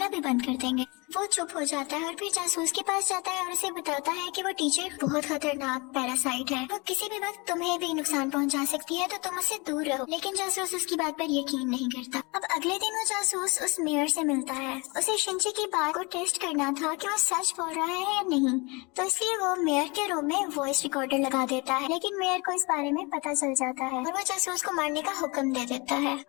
भी बंद कर देंगे। वो चुप हो जाता है और फिर जासूस के पास जाता है और उसे बताता है कि वो टीचर बहुत खतरनाक पैरासाइट है, वो किसी भी वक्त तुम्हें भी नुकसान पहुंचा सकती है तो तुम उससे दूर रहो। लेकिन जासूस उसकी बात पर यकीन नहीं करता। अब अगले दिन वो जासूस उस मेयर से मिलता है। उसे शिनची की बात को टेस्ट करना था कि वो सच बोल रहा है या नहीं, तो इसलिए वो मेयर के रूम में वॉइस रिकॉर्डर लगा देता है। लेकिन मेयर को इस बारे में पता चल जाता है और वो जासूस को मारने का हुक्म दे देता है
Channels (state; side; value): quieter; right; 27.7 dB